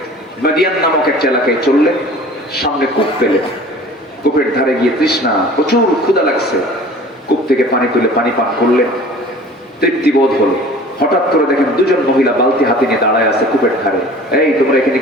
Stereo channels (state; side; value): normal; both; correlation 0.45